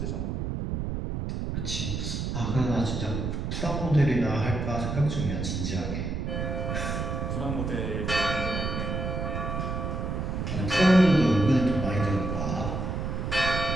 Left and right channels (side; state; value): right; noise; rumble, 2 dB below the sound